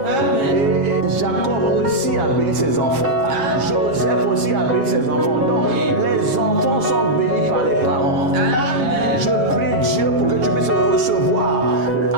Et Jacob aussi a béni ses enfants. Joseph aussi a béni ses enfants. Donc, les enfants sont bénis par les parents. Je prie Dieu pour que tu puisses recevoir,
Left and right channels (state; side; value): late; left; 7.4 ms